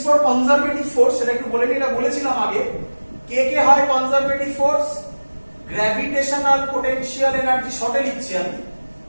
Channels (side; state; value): both; inverted; correlation -1.00